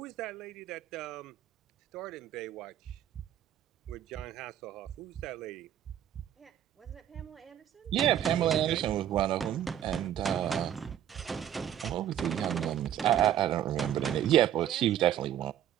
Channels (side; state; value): left; quieter; 10.8 dB